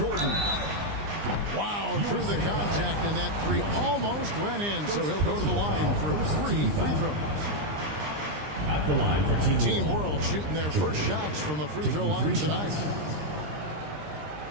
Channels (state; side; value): late; left; 20 ms